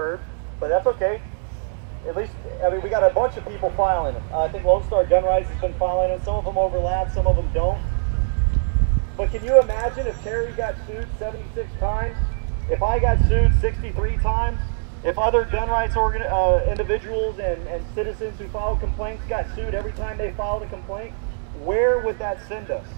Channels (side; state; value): left; silent; 64 dB below the other